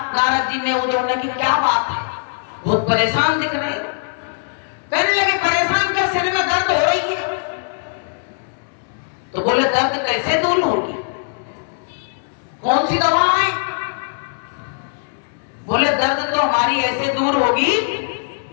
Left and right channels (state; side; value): silent; right; 66 dB below the other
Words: नारद जी ने, उद्धव ने, कि क्या बात है, बहुत परेशान दिख रहे हैं। कहने लगे, परेशान क्या, सिर में दर्द हो रही है। तो बोले, दर्द कैसे दूर होगी, कौन सी दवा है? बोले, दर्द तो हमारी ऐसे दूर होगी